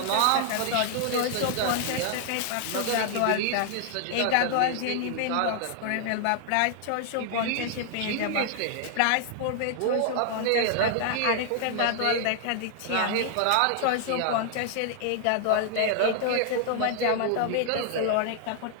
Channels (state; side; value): different; both; correlation -0.01